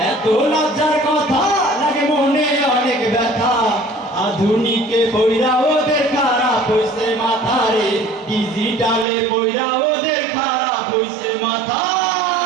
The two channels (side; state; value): left; drops out; at 9.1 s